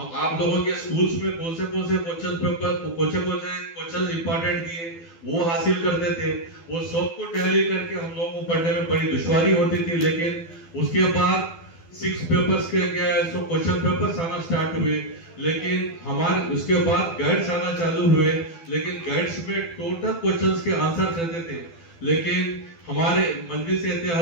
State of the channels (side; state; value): right; late; 12 ms